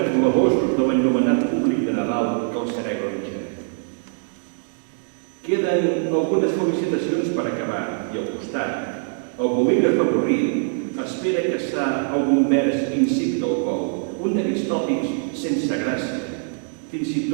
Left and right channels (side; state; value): left; silent; digital silence